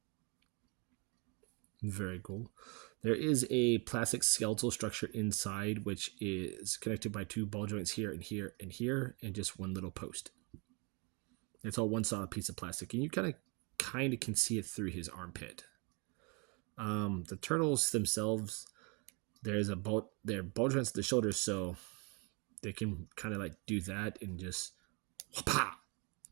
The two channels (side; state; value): left; quieter; 31.7 dB